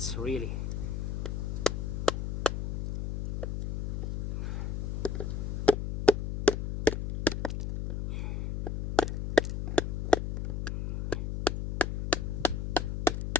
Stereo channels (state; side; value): noise; left; hum, 2 dB below the sound